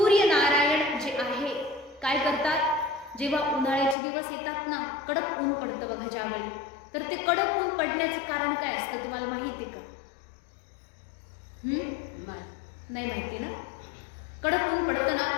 जे आहे, काय करतात? जेव्हा उन्हाळ्याचे दिवस येतात ना, कडक ऊन पडतं बघा ज्यावेळी, तर ते कडक ऊन पडण्याचं कारण काय असतं तुम्हाला माहिती आहे का? नाही माहिती ना. कडक ऊन पडतं ना,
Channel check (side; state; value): right; drops out; at 4.0 s